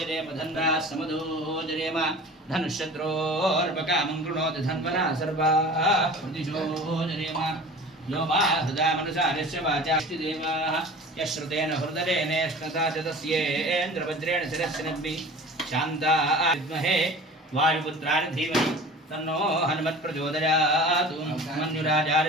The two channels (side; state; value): both; normal; correlation 0.40